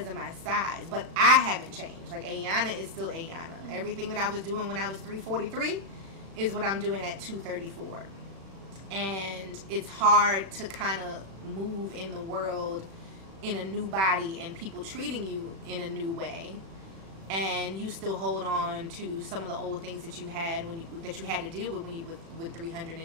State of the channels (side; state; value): left; late; 36 ms